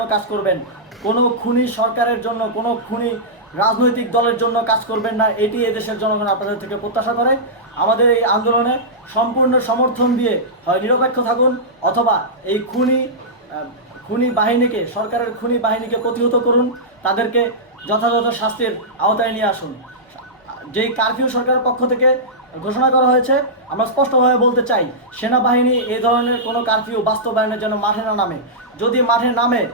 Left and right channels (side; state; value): both; normal; correlation -0.13